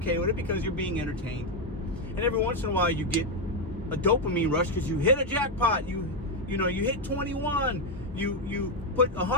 with it because you're being entertained. And every once in a while you get a dopamine rush because you hit a jackpot. You hit 21. You put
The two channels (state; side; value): normal; both; correlation 0.04